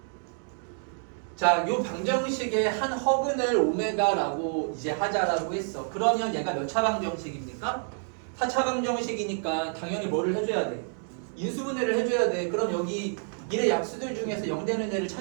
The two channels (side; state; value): left; silent; 59 dB below the other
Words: 자, 요 방정식의 한 허근을 오메가라고 이제 하자라고 했어. 그러면 얘가 몇 차 방정식입니까? 4차 방정식이니까 당연히 뭐를 해줘야 돼? 인수분해를 해줘야 돼. 그럼 여기 일의 약수들 중에서 0 되는 애를